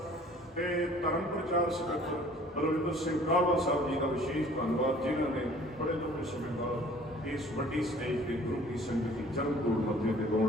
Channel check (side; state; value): both; normal; correlation 0.52